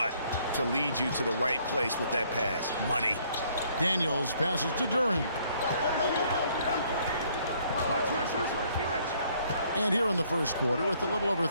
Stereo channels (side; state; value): both; inverted; correlation -0.64